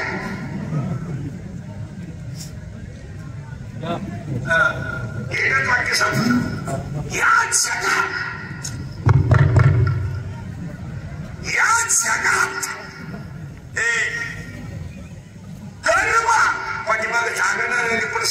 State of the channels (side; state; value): both; identical; correlation 1.00